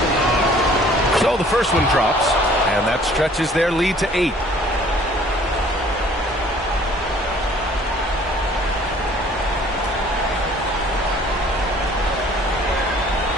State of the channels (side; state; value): both; normal; correlation 0.54